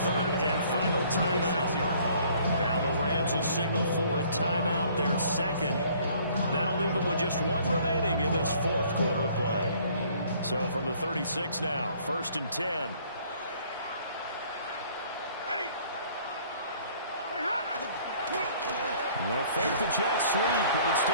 and final timeout. Now the Rams will signal for a timeout, their 2nd. That'll leave them with just 1 remaining in this 4th quarter of play. So from the 36 now, 1st and 10. They'll fake the jet sweep, and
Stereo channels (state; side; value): inverted; both; correlation -0.58